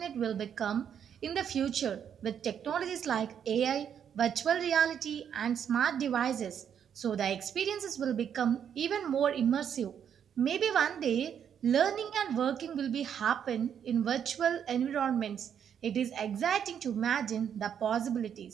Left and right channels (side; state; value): left; quieter; 8.5 dB